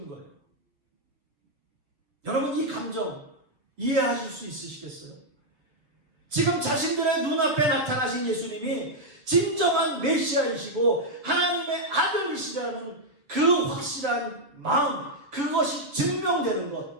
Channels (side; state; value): left; late; 7.0 ms